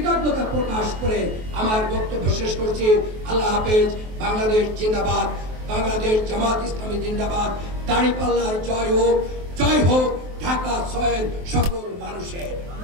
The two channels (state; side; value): late; left; 23 ms